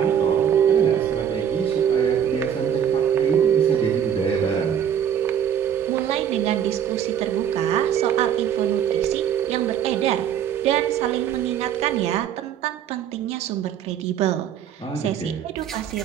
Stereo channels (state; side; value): quieter; left; 9.0 dB